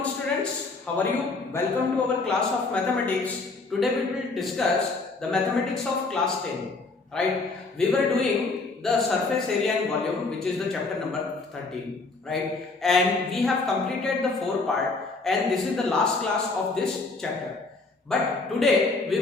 students. How are you? Welcome to our class of mathematics. Today we will discuss the mathematics of class 10. Right? We were doing the surface area and volume, which is the chapter number 13. Right? And we have completed the 4 part, and this is the last class of this chapter. But today we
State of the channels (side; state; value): right; quieter; 3.7 dB